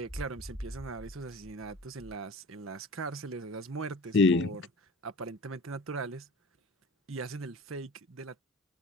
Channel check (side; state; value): both; normal; correlation 0.40